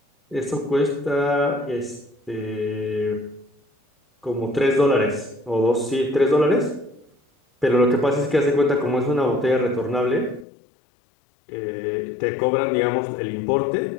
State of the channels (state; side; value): drops out; right; at 10.5 s